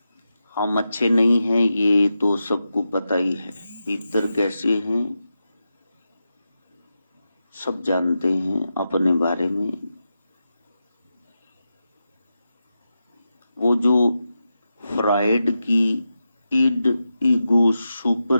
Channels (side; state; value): both; inverted; correlation -0.89